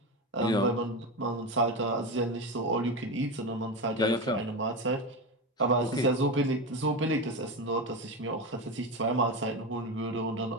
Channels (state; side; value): normal; both; correlation 0.18